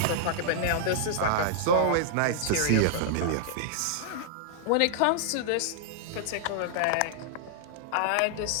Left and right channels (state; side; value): different; both; correlation -0.01